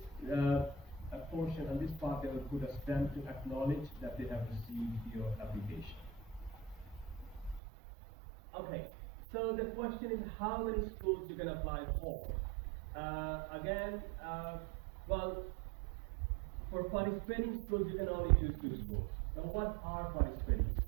portion, on this part, they will put a stamp to acknowledge that they have received your application. Okay, so the question is how many schools you can apply for. Again, well, for participating schools, you can only choose two schools. Now, what are participating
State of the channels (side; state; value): left; drops out; at 7.6 s